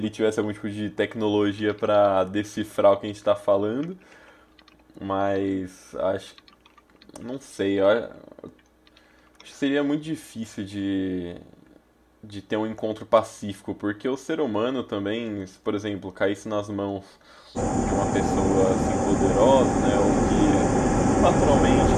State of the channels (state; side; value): identical; both; correlation 1.00